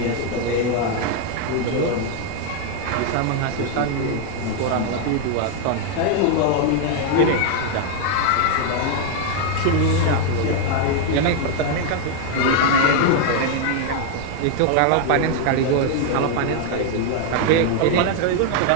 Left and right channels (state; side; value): different; both; correlation 0.00